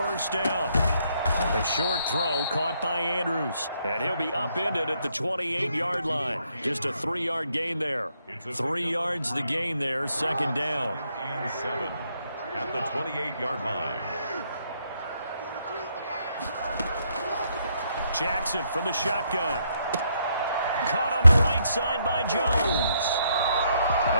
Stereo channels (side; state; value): both; inverted; correlation -0.74